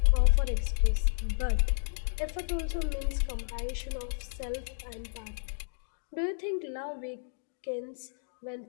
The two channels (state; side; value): silent; right; digital silence